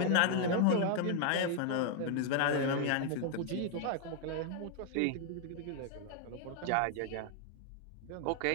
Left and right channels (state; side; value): different; both; correlation 0.00